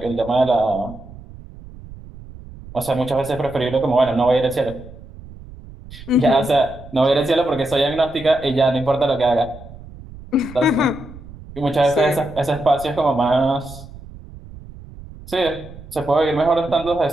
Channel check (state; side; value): noise; right; rumble, 17 dB below the sound